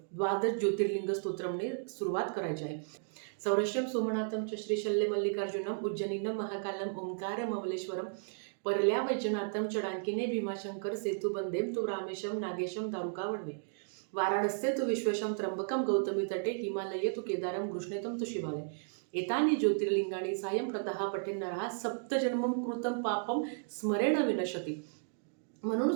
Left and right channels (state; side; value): silent; left; digital silence